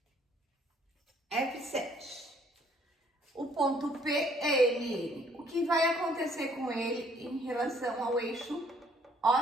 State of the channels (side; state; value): both; normal; correlation 0.63